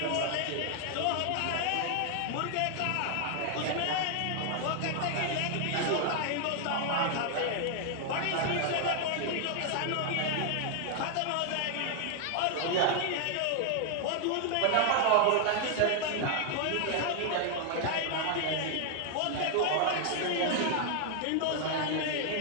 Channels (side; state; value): both; different; correlation 0.00